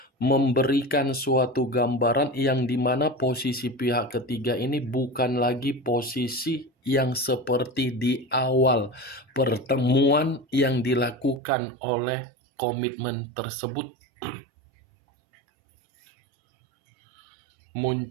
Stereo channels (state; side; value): drops out; left; at 11.4 s